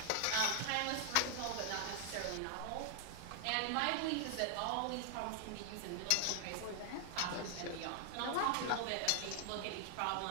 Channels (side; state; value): both; different; correlation 0.00